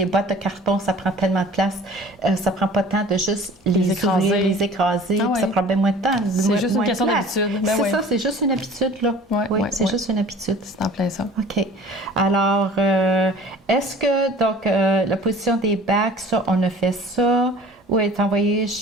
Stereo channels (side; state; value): both; normal; correlation 0.46